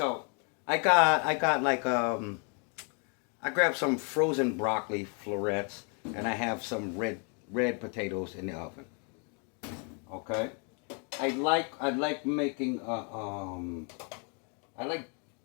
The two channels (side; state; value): right; quieter; 37.9 dB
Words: I got like I grabbed some frozen broccoli florets and I have some red potatoes in the oven. Okay. I like making I like